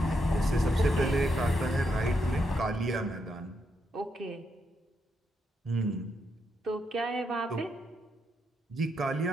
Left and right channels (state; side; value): normal; both; correlation 0.81